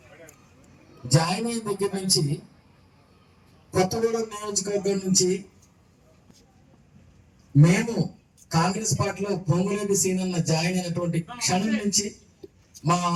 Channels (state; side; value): identical; both; correlation 1.00